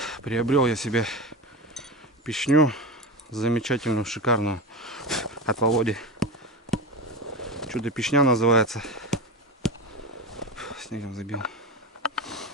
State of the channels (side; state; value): both; normal; correlation 0.22